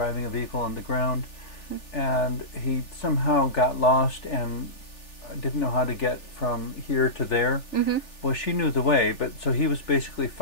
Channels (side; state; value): right; late; 3.4 ms